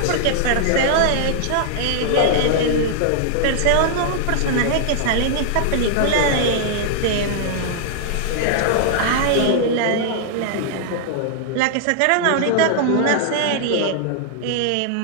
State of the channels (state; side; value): different; both; correlation -0.01